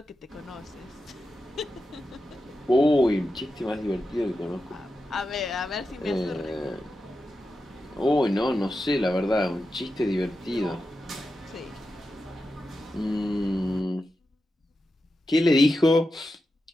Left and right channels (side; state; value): both; normal; correlation 0.90